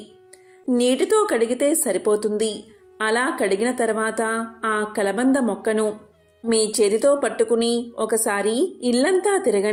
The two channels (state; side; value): identical; both; correlation 1.00